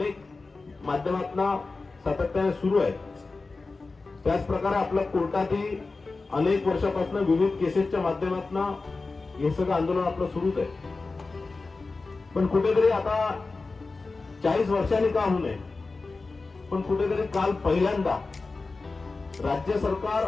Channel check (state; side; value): quieter; right; 3.8 dB